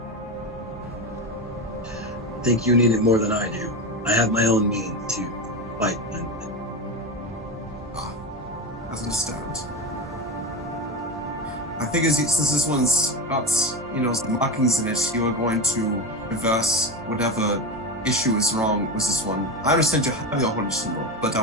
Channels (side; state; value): both; normal; correlation 0.20